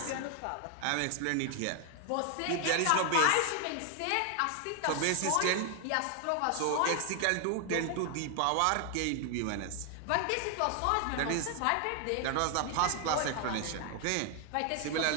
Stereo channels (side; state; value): both; different; correlation 0.00